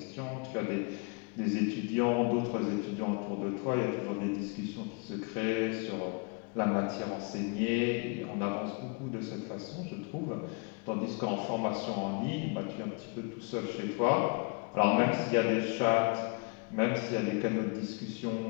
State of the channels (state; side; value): quieter; right; 32.8 dB